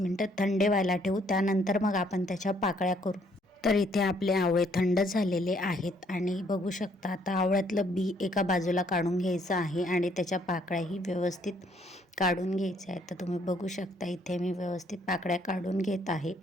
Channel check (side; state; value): both; normal; correlation 0.66